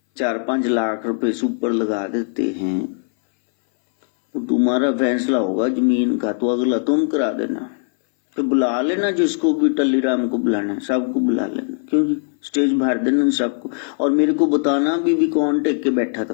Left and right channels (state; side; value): silent; right; 60 dB below the other